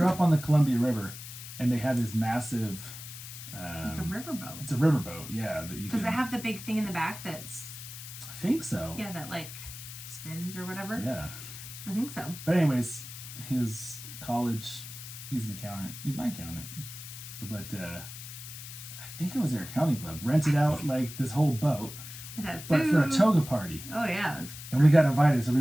up on the Columbia River, and they had this massive. Like a riverboat. It's a riverboat, yeah. That you Does can. it have the big thing in the back that's? I think so. Yeah, that like spins or whatever. Yeah. I think so. But anyways, his college, he's an accountant. He's my accountant. But I think it was their accounting club rented out like this whole boat, It had food. but for a toga party. Oh yeah. And we got invited, so we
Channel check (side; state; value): left; noise; hiss, 12 dB below the sound